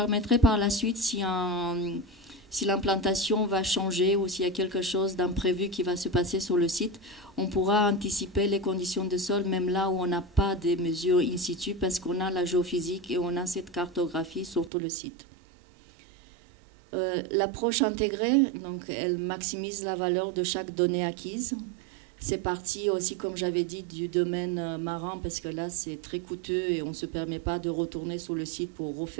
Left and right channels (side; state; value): left; drops out; at 14.7 s